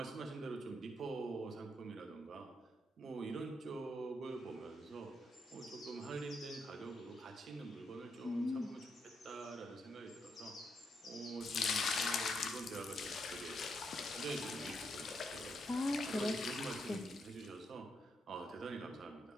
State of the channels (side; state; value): both; normal; correlation 0.79